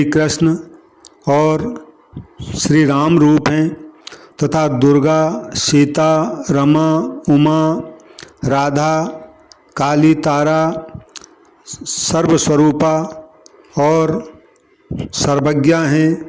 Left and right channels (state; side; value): identical; both; correlation 1.00